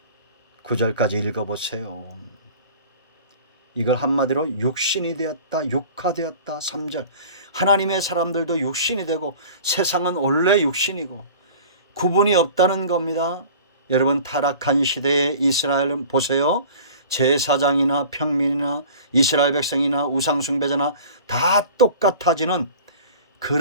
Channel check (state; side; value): inverted; both; correlation -0.43